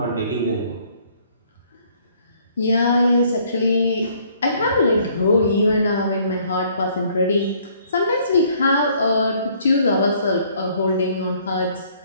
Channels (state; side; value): inverted; both; correlation -0.62